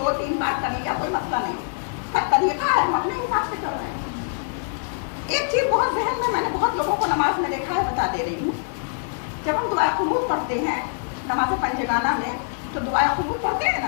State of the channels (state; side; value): silent; right; digital silence